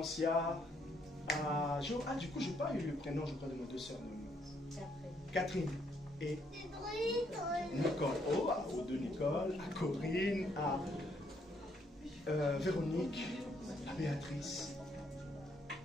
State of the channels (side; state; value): both; normal; correlation 0.72